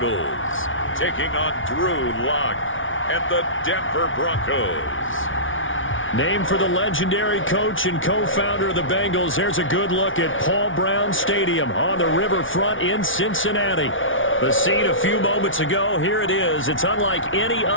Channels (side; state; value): right; late; 0.57 ms